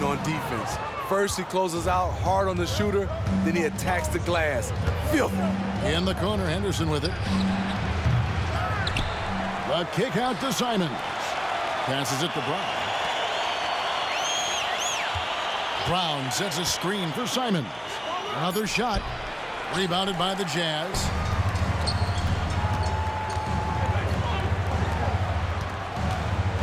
on defense. First he closes out hard on the shooter, then he attacks the glass. Filthy. In the corner, Henderson with it. The kick out to Simons. Passes it to Brown. Brown sets a screen for Simons. Another shot. Rebounded by the Jazz.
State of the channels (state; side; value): identical; both; correlation 1.00